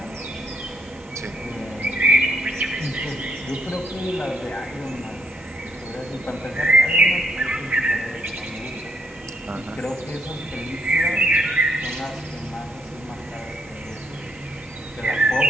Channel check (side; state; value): both; normal; correlation 0.73